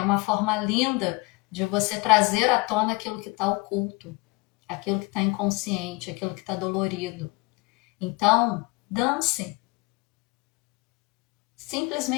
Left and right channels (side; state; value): right; quieter; 26.2 dB